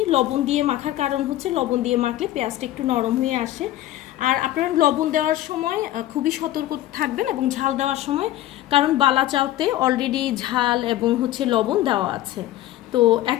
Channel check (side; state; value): right; quieter; 14.2 dB